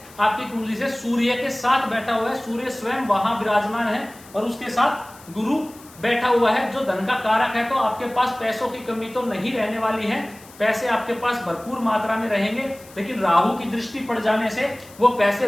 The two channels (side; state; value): left; noise; hiss, 22 dB below the sound